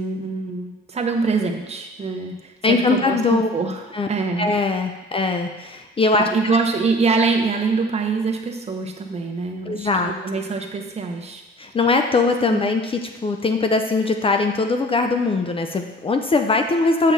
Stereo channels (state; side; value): normal; both; correlation 0.47